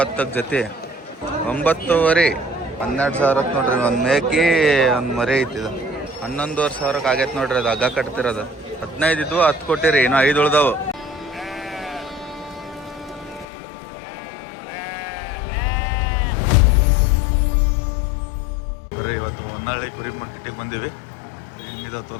ಜೊತೆ 9.5 12 ಸಾವಿರಕ್ಕೆ ನೋಡ್ರಿ. ಒಂದು ಮೇಕಿ ಒಂದು ಮರಿ ಐತಿದು 11.5 ಸಾವಿರಕ್ಕೆ ಆಗೈತೆ ನೋಡ್ರಿ. ಅದು ಹಗ್ಗ ಕಟ್ತಿರೋದು 15 ಇದ್ವು, 10 ಕೊಟ್ಟಿರಿ, ಇನ್ನೂ 5 ಉಳ್ದಾವು. ಬರ್ರಿ ಇವತ್ತು ಹೊನ್ನಾಳಿ ಕುರಿ ಮಾರ್ಕೆಟಿಗೆ ಬಂದೀವಿ. ಹೆಂಗಿದಾವ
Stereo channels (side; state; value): right; drops out; at 13.5 s